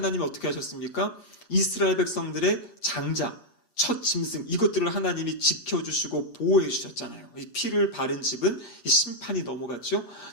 어떻게 하셨습니까? 이스라엘 백성들의 장자, 첫 짐승, 이것들을 하나님이 지켜주시고 보호해 주셨잖아요. 이 피를 바른 집은 이 심판이 넘어갔죠.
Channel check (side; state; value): right; late; 8.4 ms